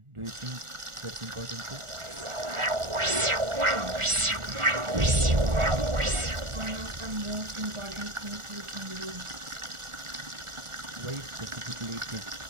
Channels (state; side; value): late; left; 1.4 ms